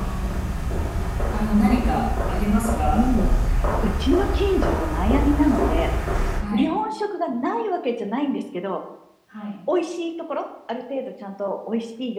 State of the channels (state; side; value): identical; both; correlation 1.00